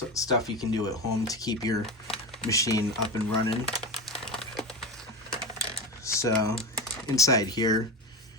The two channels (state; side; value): normal; both; correlation 0.21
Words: stuff you can do at home to keep your machine up and running. So inside here